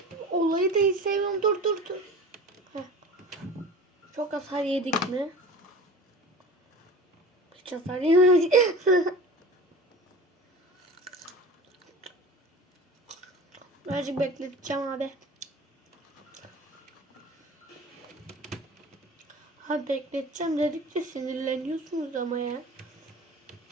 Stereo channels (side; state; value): both; normal; correlation 0.38